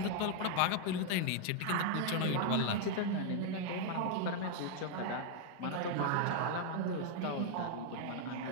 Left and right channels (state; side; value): different; both; correlation 0.00